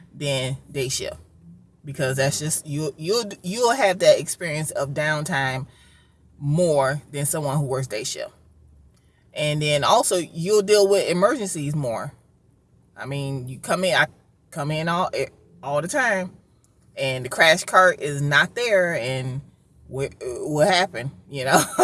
than day shift, because that's just you'll have that experience of downtime more than someone who works day shift. And then also you'll deal with emergencies more. I mean, I come in all the time, and the crash cart is not there, and what happened?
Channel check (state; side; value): identical; both; correlation 1.00